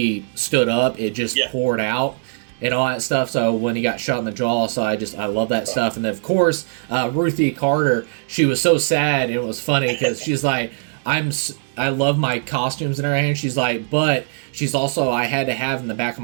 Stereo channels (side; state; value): left; silent; digital silence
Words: stood up, it just poured out. And all that stuff. So when he got shot in the jaw, so I love that stuff. And then of course, Ruthie Carter, she was so sad, and it was funny because she's like, I love my costumes in her hand. She's like, but she's also, I had to have in the back of